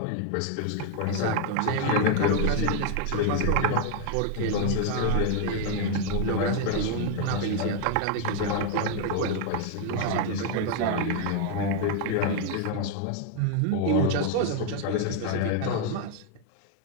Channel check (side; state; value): both; different; correlation 0.00